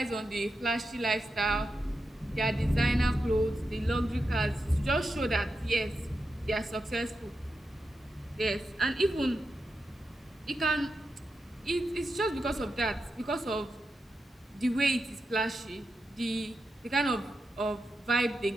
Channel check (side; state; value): both; normal; correlation 0.88